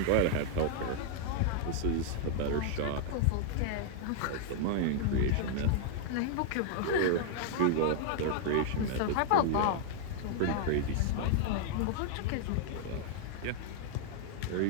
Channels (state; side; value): different; both; correlation -0.01